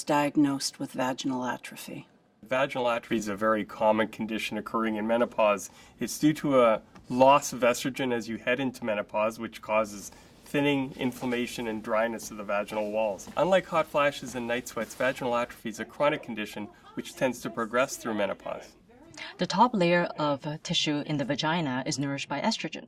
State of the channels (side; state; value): both; identical; correlation 1.00